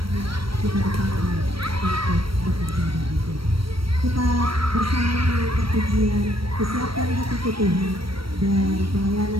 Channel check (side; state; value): left; late; 0.75 ms